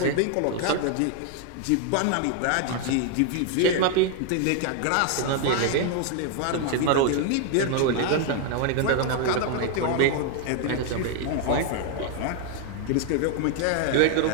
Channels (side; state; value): both; different; correlation 0.00